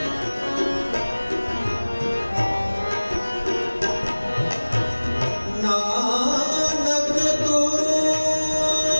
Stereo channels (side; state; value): both; inverted; correlation -1.00